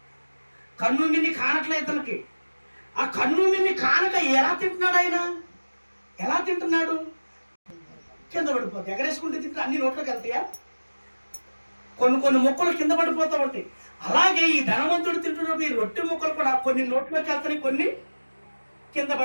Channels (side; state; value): both; inverted; correlation -1.00